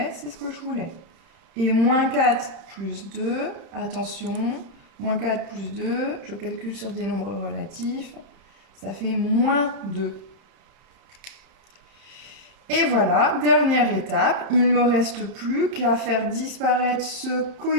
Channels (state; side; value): late; left; 31 ms